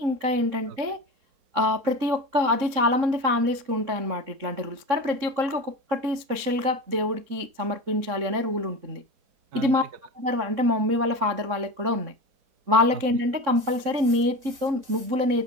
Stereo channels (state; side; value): late; left; 3.7 ms